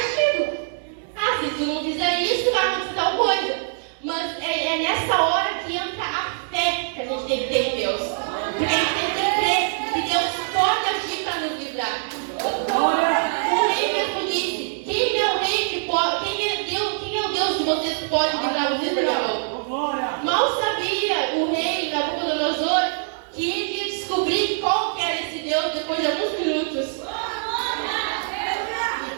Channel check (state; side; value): silent; left; 63 dB below the other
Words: Se tu não fizer isso, vai acontecer tal coisa. Mas é nessa hora que entra a fé que a gente tem que ter em Deus. Porque a gente tem que crer que Deus pode agir para nos livrar. O rei mesmo disse, quem é o rei que pode, quem é o Deus de vocês que pode livrar vocês da minha mão? Mal sabia o rei Nabucodonosor que ele ia descobrir qual que era esse Deus depois de alguns minutos.